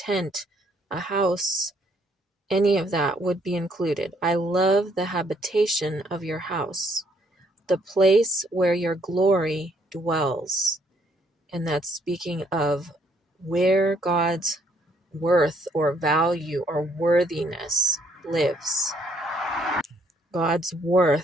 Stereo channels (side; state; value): both; normal; correlation 0.68